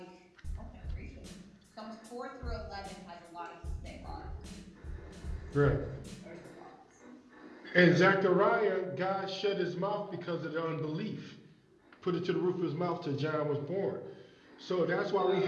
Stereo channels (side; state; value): both; identical; correlation 1.00